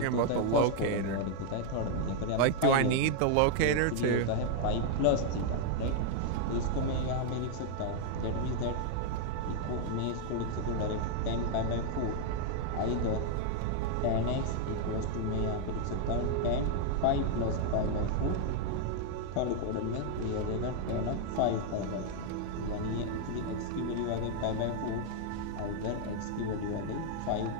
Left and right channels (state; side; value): different; both; correlation 0.00